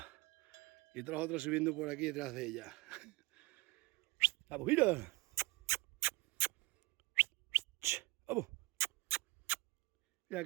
Y todos los otros subiendo por aquí detrás de ella. ¡Vamos, mira! ¡Vamos! Mira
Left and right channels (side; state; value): left; quieter; 22.4 dB